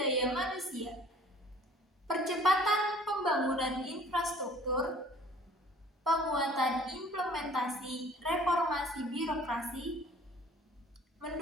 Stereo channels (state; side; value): normal; both; correlation 0.52